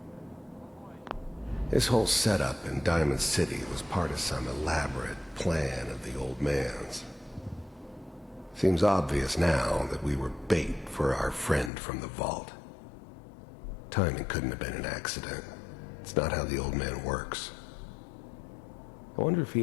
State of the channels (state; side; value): drops out; right; at 11.7 s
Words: This whole setup in Diamond City was part of some elaborate plan of the old man's. Seems obvious now that we were bait for our friend from the vault. Timing couldn't have been an accident. It's not how the old man works. I wonder if